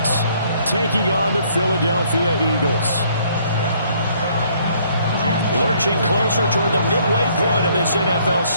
taking on the Philadelphia Eagles. Lurching closer toward the midway point of this NFL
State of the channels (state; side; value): inverted; both; correlation -0.64